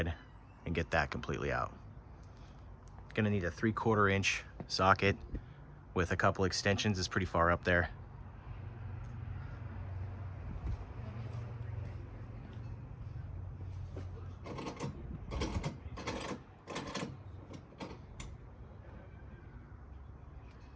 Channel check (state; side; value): identical; both; correlation 1.00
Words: and get that completely out. Gonna need a 3/4 inch socket with a couple extensions. It's pretty far up there.